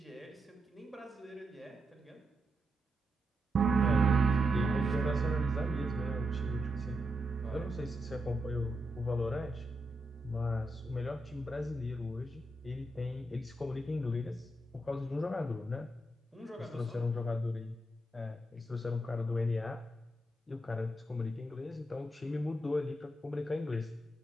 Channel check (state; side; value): normal; both; correlation 0.84